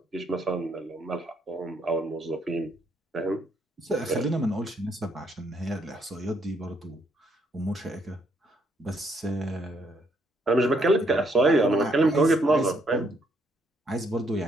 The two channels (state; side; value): normal; both; correlation 0.72